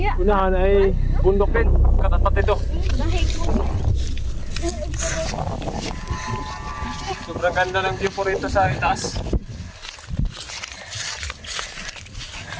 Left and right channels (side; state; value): both; identical; correlation 1.00